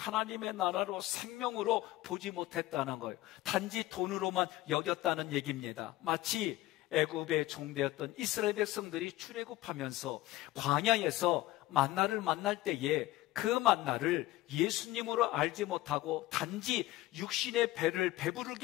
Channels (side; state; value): right; quieter; 17.1 dB